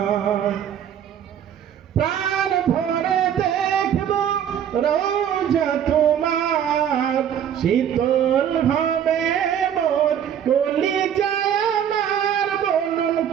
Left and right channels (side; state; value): left; quieter; 9.2 dB